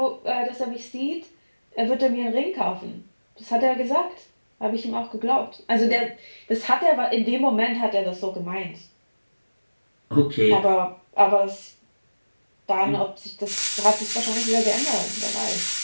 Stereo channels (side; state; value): both; inverted; correlation -1.00